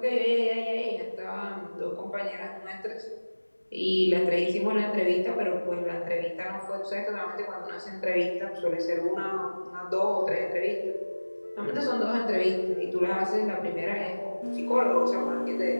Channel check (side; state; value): both; inverted; correlation -1.00